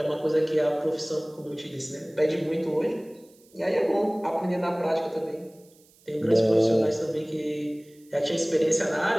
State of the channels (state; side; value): noise; right; hiss, 30 dB below the sound